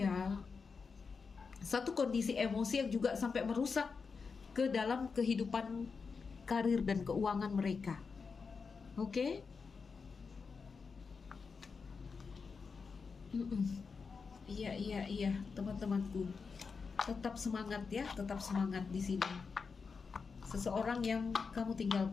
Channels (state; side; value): quieter; right; 5.1 dB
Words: Satu kondisi emosi yang juga sampai merusak ke dalam kehidupan karir dan keuangan mereka. Oke? Iya, teman-temanku. Tetap semangat ya, tetap semangat di sini. Seseorang yang kamu